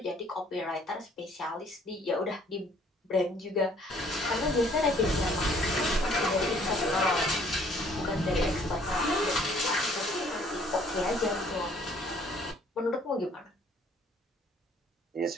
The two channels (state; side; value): normal; both; correlation 0.60